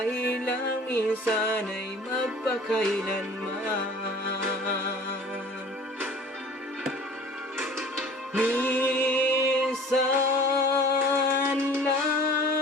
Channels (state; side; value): normal; both; correlation 0.46